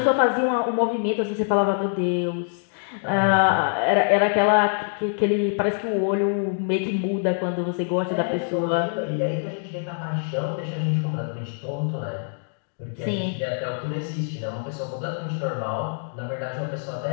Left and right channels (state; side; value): silent; right; digital silence